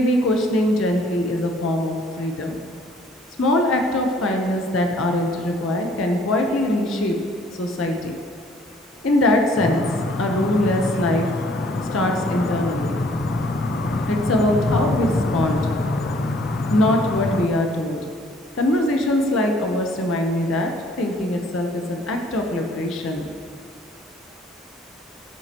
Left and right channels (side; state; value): both; normal; correlation 0.60